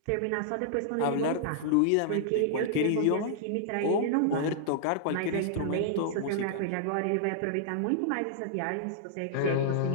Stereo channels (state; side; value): different; both; correlation -0.01